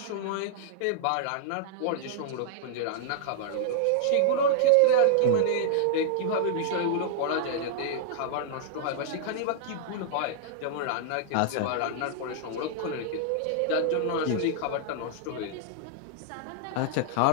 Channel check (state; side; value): different; both; correlation -0.01